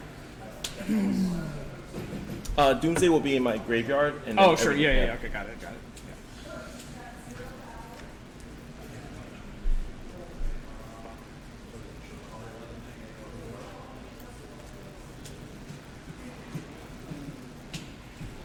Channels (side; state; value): both; identical; correlation 1.00